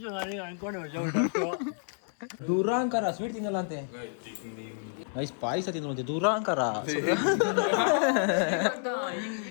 ದೂರಾಂಕಾರ ಸ್ವೀಟ್ ತಿನ್ನಲ್ಲ ಅಂತೆ. ಐಸ್ ಪಾಯಸ ತಿನ್ನುವಂತೆ ದೂರಾಂಕಾರ.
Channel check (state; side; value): silent; right; digital silence